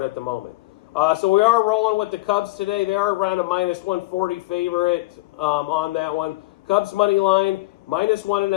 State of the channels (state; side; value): quieter; right; 20.9 dB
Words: at the moment. So we are rolling with the Cubs today. They are around a minus 140 favorite on that one. Cubs money line, minus